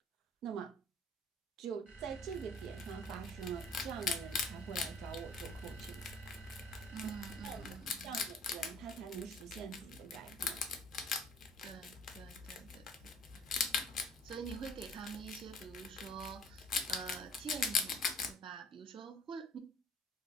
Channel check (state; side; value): normal; both; correlation 0.53